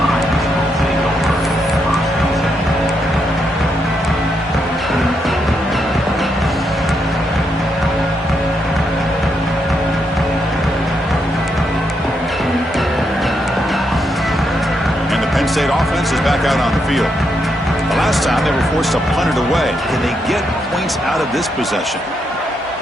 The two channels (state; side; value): normal; both; correlation 0.80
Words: And the Penn State offense is back out on the field. The last time they were forced to punt it away. Can they get points out of this possession?